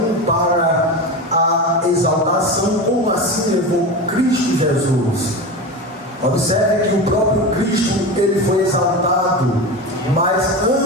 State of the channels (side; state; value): both; normal; correlation 0.24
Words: para a exaltação, como assim levou Cristo Jesus. Observe que o próprio Cristo, ele foi exaltado, mas